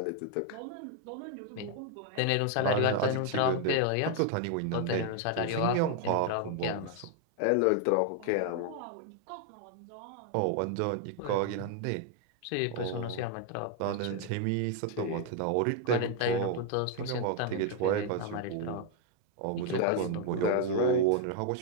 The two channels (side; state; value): both; different; correlation 0.00